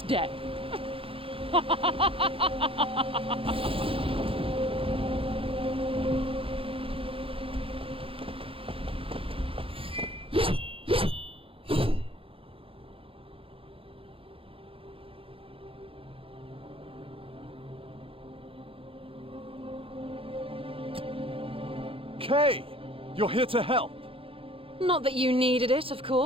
death. Kay! You're here to help! Not that you needed it, of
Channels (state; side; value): late; left; 0.27 ms